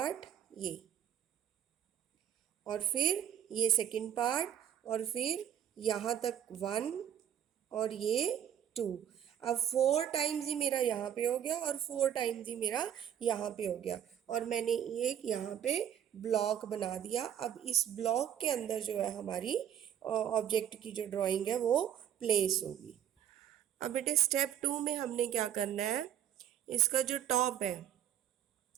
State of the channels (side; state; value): left; quieter; 10.0 dB